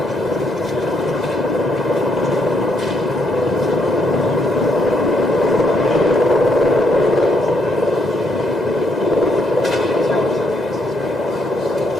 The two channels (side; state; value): both; normal; correlation 0.74